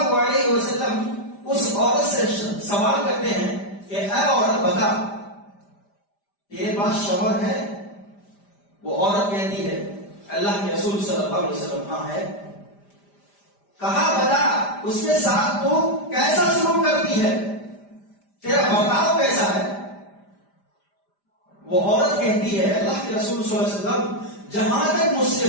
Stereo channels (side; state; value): right; late; 5.0 ms